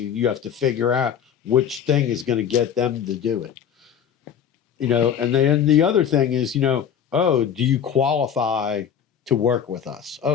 You have to figure out which thing is going to get them to do it. And then the other thing is, do you qualify to work with us?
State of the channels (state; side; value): quieter; right; 8.4 dB